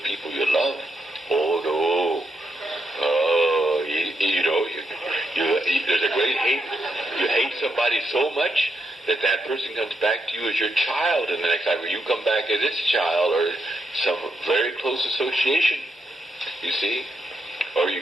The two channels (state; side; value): normal; both; correlation 0.81